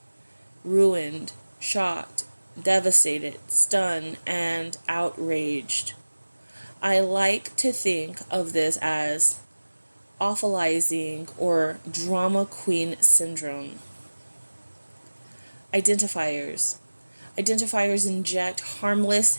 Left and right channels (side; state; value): both; inverted; correlation -1.00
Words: ruined, shocked, devastated, stunned, and outraged. I like to think of this as awfulizing or drama queen syndrome. Identifiers. Identifiers inject